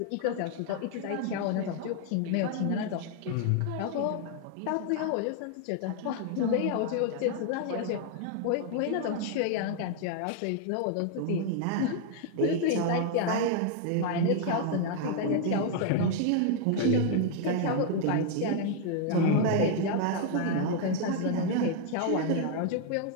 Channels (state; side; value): different; both; correlation 0.00